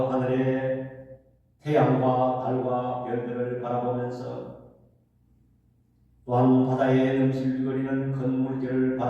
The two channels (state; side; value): identical; both; correlation 1.00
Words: 하늘의 태양과 달과 별들을 바라보면서 또한 바다에 넘실거리는 큰 물결을